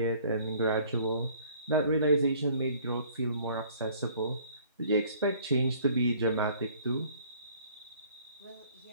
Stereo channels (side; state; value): both; inverted; correlation -0.55